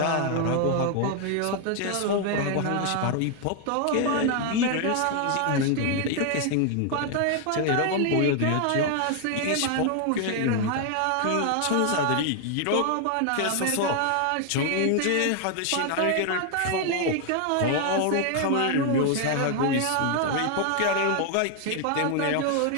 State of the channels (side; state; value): both; different; correlation 0.00